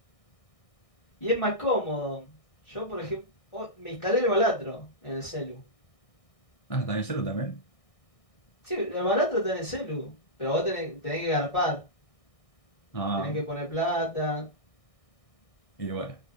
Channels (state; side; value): late; right; 1.6 ms